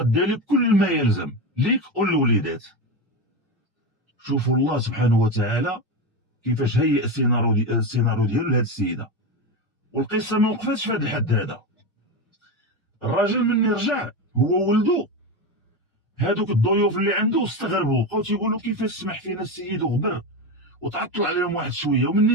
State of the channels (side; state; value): both; normal; correlation 0.17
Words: لك كل ما يلزم ليك وللوليدات. شوفوا الله سبحانه وتعالى كيفاش هيئ السيناريو ديالو لهاد السيده. والقصه ما وقفتش في هذا الحد هذا. الراجل مني رجع هو ولدو، هادوك الضيوف اللي عنده استغربوا، بقاو تيقولوا كيفاش سمح فينا السيد وغبر وتعطل عليهم واحد شويه. ومني